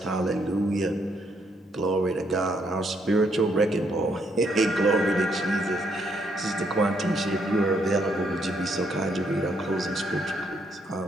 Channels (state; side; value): normal; both; correlation 0.73